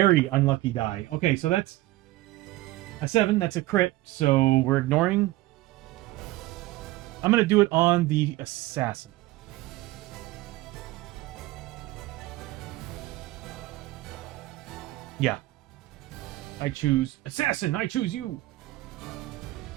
unlucky die. Okay, so that's a 7. That's a crit. So we're ignoring. I'm going to do it on the assassin. Yeah. I choose assassin. I choose you.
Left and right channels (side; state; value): left; quieter; 17.7 dB